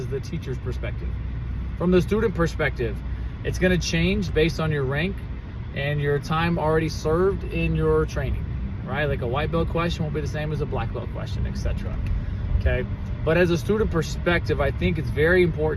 the teacher's perspective. From the student perspective, it's going to change based on your rank and your time already served in your training, right? Like a white belt question won't be the same as a black belt question, etc. Okay, but as a student perspective, I think it's very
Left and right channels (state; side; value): identical; both; correlation 1.00